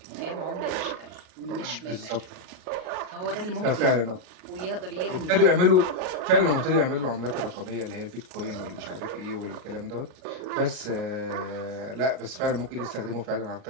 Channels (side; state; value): left; late; 38 ms